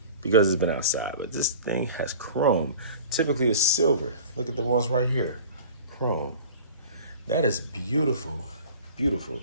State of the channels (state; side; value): inverted; both; correlation -0.42